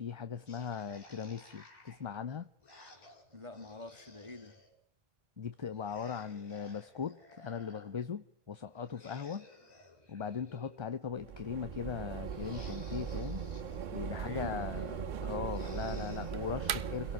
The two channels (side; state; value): left; late; 2.1 ms